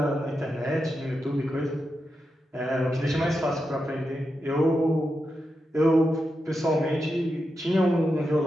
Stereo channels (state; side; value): normal; both; correlation 0.88